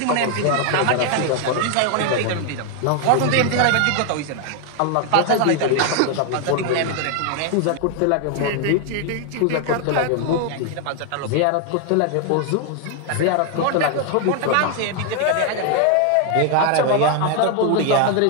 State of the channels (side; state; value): both; different; correlation 0.00